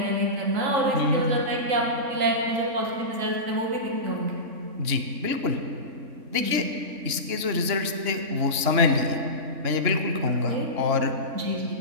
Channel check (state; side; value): late; left; 3.6 ms